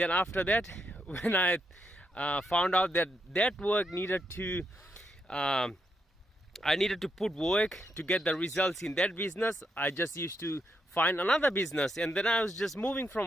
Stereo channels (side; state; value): both; normal; correlation 0.81